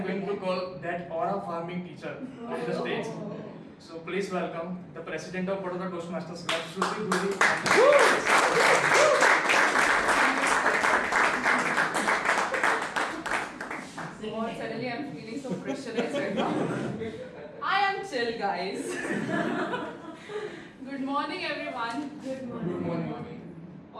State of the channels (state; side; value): identical; both; correlation 1.00